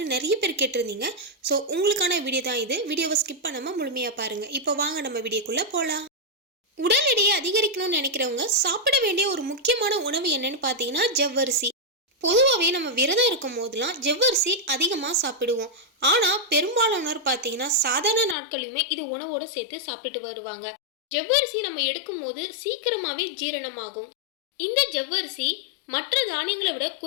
நிறைய பேர் கேட்டிருந்தீங்க. ஸோ உங்களுக்கான வீடியோ தான் இது. வீடியோவை ஸ்கிப் பண்ணாம முழுமையா பாருங்க. இப்போ வாங்க நம்ம வீடியோக்குள்ள போகலாம். உடல் எடையை அதிகரிக்கணும்னு நினைக்கிறவங்க சாப்பிட வேண்டிய ஒரு முக்கியமான உணவு என்னன்னு பார்த்தீங்கன்னா ஜவ்வரிசி. பொதுவாகவே நம்ம விரதம் இருக்கும் போதெல்லாம் ஜவ்வரிசி அதிகமாக சாப்பிடுவோம். ஆனால் பெரும்பாலானோர் பார்த்தீங்கன்னா சாதாரண நாட்களையுமே இது உணவோடு சேர்த்து சாப்பிட்டு வருவாங்க. ஜவ்வரிசி நம்ம எடுக்கும் போது சீக்கிரமாகவே ஜீரணமாகும். இந்த ஜவ்வரிசி மற்ற தானியங்களை விட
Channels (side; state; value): right; drops out; at 18.4 s